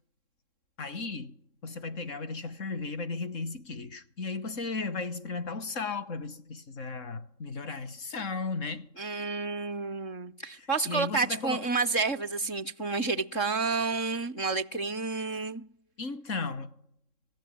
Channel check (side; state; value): right; late; 3.7 ms